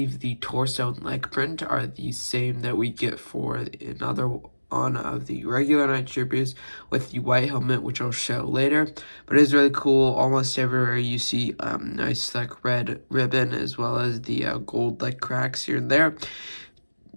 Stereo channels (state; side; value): inverted; both; correlation -1.00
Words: the torso and leg print are the same that we get for another one of the regular Night Troopers with the white helmet, which I'll show later. But it is really cool. Almost everywhere you see nice red ribbon, as well as the gold cracks here and there.